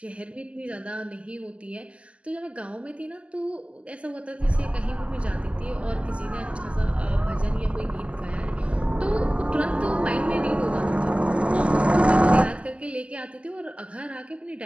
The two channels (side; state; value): left; late; 0.059 ms